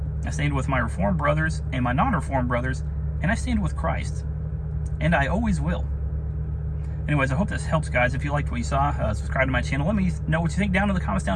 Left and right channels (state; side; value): identical; both; correlation 1.00